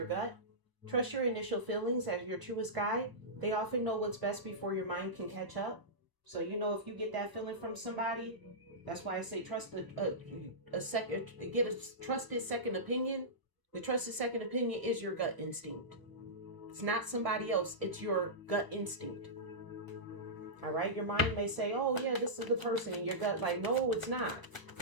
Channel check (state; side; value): late; left; 1.0 ms